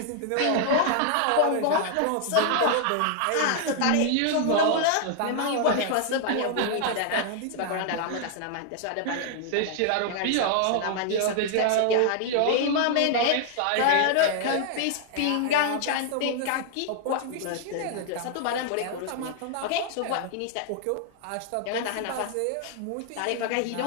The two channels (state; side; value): different; both; correlation 0.00